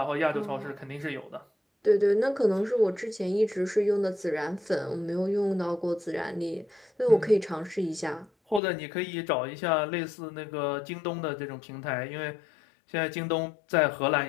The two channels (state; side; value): drops out; right; at 8.6 s